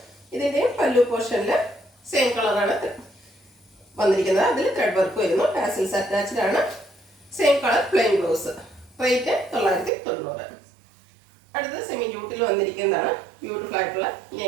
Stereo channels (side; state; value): left; drops out; at 9.9 s